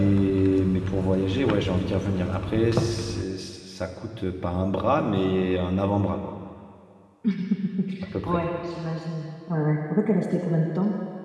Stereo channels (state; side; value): identical; both; correlation 1.00